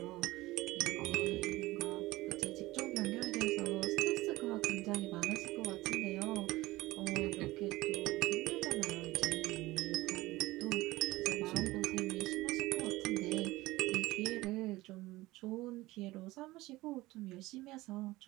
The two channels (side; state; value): left; quieter; 19.0 dB